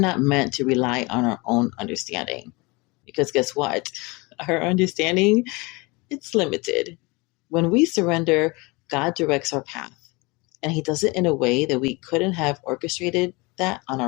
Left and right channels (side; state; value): right; quieter; 26.2 dB